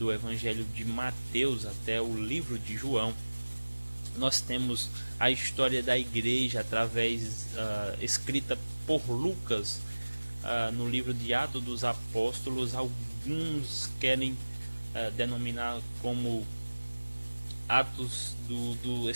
Evangelho de Mateus até o livro de João. Nós temos a história da igreja através escrita por Lucas no livro de Atos dos Apóstolos. Alguns querem denominar como Atos do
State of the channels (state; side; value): inverted; both; correlation -1.00